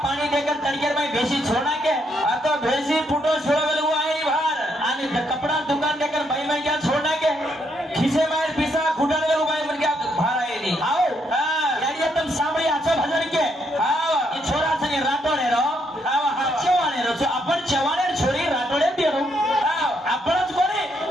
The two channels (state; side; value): normal; both; correlation 0.75